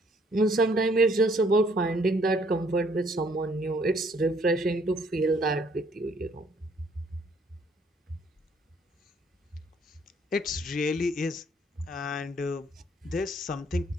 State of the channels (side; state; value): both; normal; correlation 0.64